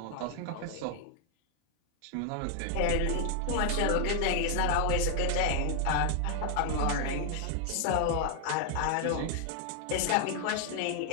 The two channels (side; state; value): both; different; correlation 0.00